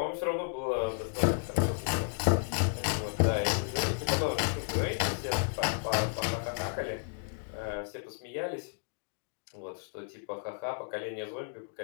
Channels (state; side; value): silent; right; digital silence